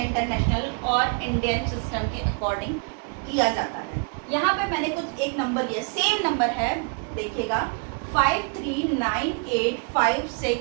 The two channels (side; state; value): left; quieter; 38.3 dB